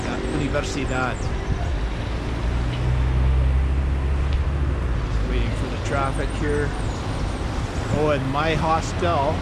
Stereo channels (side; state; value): both; identical; correlation 1.00